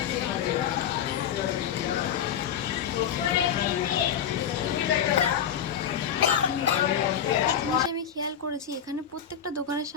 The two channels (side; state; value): right; quieter; 8.6 dB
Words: একটা জিনিস আমি খেয়াল করেছি, এখানে প্রত্যেকটা দোকানের